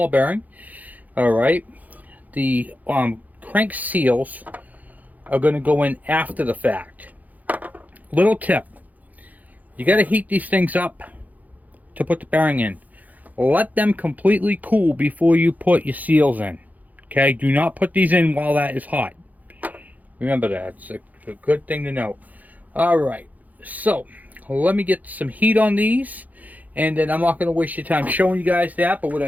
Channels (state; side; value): late; left; 0.080 ms